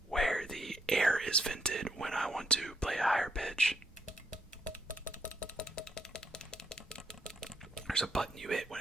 where the air is vented when I want to play a higher pitch. There's a button you hit when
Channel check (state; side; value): normal; both; correlation 0.74